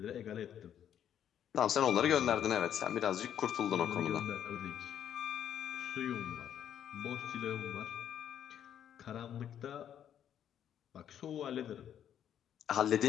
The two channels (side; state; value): right; quieter; 9.8 dB